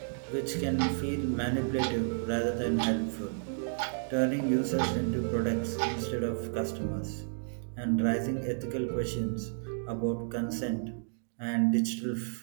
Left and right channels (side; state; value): left; silent; digital silence